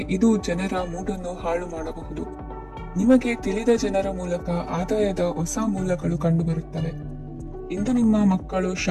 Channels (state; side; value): identical; both; correlation 1.00